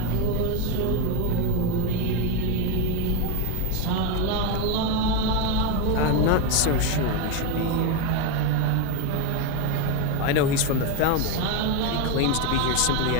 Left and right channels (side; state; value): both; different; correlation 0.03